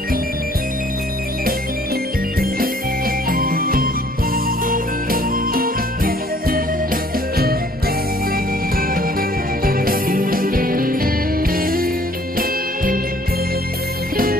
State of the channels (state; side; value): normal; both; correlation 0.58